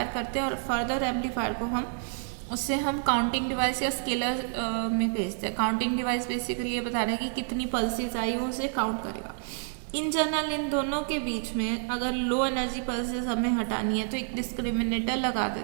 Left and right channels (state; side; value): silent; left; 59 dB below the other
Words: करते हैं और फर्दर एम्पलीफायर को उससे हम काउंटिंग डिवाइस या स्केलर में भेजते हैं. काउंटिंग डिवाइस बेसिकली ये बता रहा है कि कितनी पल्सेस आई वो उसे काउंट करेगा. इन जनरल इन दोनों के बीच में अगर लो एनर्जी पल्सेस हमें हटानी है तो एक डिस्क्रिमिनेटर लगा